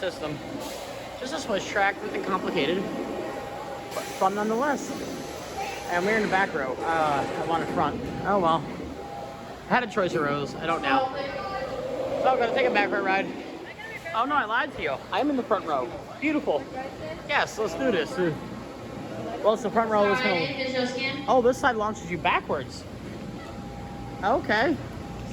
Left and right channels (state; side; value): identical; both; correlation 1.00